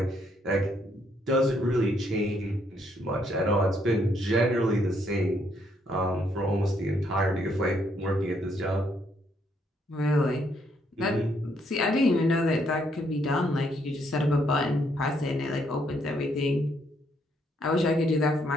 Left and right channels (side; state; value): both; normal; correlation 0.72